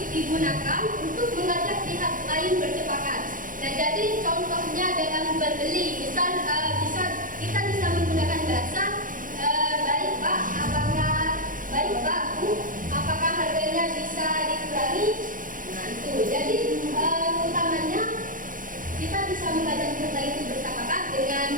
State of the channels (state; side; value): late; left; 0.39 ms